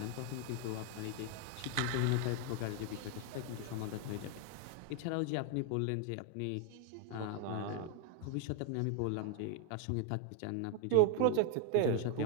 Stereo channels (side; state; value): both; different; correlation 0.00